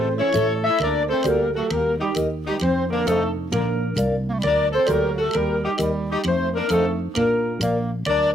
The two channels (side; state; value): both; normal; correlation 0.77